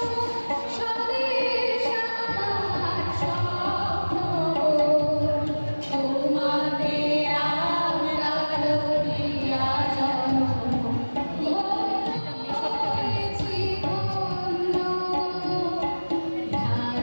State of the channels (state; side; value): inverted; both; correlation -1.00